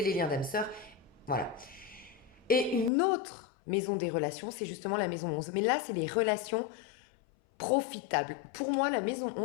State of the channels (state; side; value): drops out; right; at 2.9 s